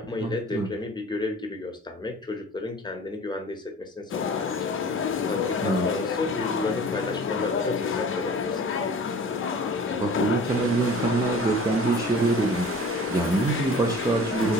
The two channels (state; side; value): normal; both; correlation 0.44